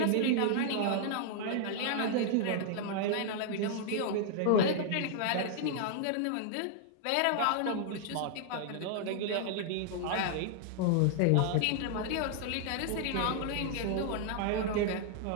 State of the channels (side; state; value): both; different; correlation 0.00